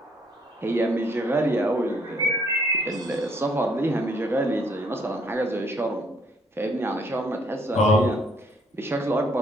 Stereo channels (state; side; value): normal; both; correlation 0.65